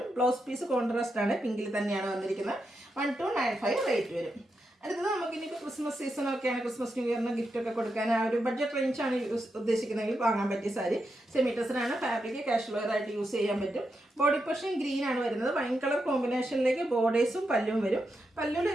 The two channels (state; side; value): normal; both; correlation 0.86